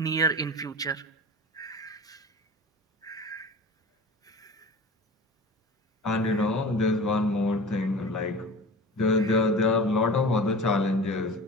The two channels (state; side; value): normal; both; correlation 0.36